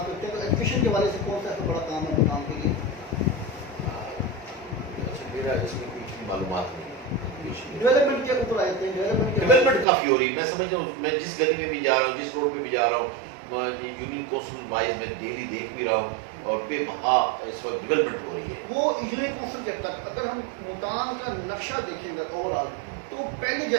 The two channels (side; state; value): left; drops out; at 9.9 s